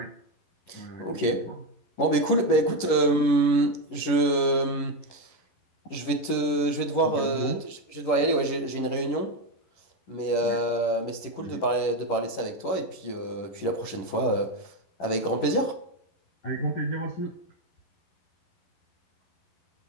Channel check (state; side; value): late; right; 11 ms